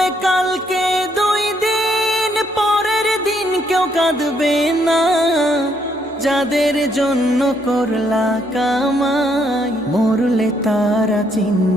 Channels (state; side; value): normal; both; correlation 0.72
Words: কালকে 2 দিন পরের দিন কেউ কাঁদবে না। যাদের জন্য করলা কামাই মরলে তারা